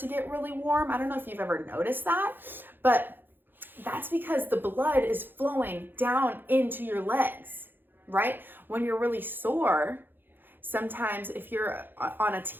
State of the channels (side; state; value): left; late; 0.096 ms